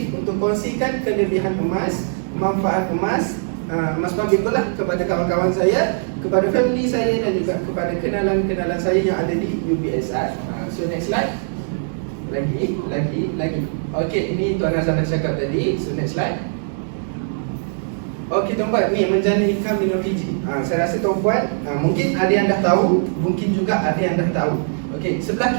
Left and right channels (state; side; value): silent; left; digital silence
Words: untuk kongsikan kelebihan emas, manfaat emas, emas public lah kepada kawan-kawan saya, kepada family saya dan juga kepada kenalan-kenalan saya yang ada di UBSI. So next slide. Lagi. Okay, ini Tuan Azhar dah cakap tadi. So next slide. Okey tuan-puan, ni menjana income dengan PG. Saya rasa tuan-puan mungkin ada yang dah tahu, mungkin juga ada yang dah tahu. Okey, sebelah